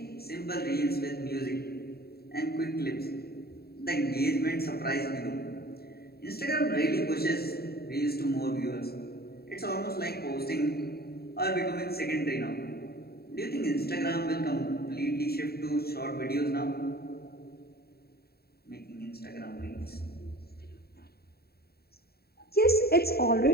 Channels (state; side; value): late; right; 0.45 ms